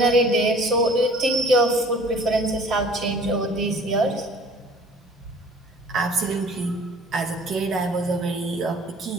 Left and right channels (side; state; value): both; normal; correlation 0.50